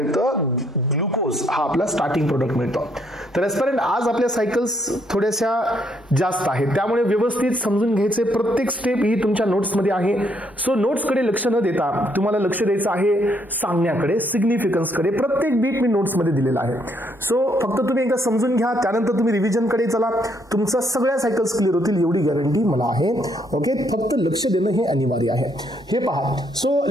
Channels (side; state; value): both; normal; correlation 0.71